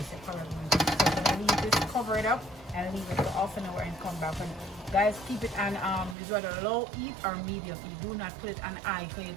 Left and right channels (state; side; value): drops out; left; at 6.2 s